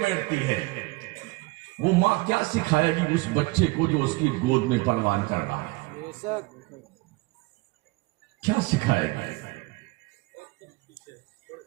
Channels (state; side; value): quieter; left; 23.8 dB